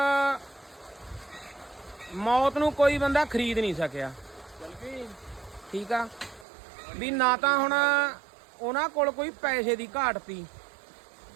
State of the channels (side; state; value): left; drops out; at 6.5 s